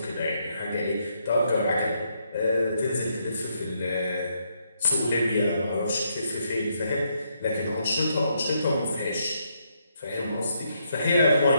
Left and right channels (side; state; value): both; inverted; correlation -0.76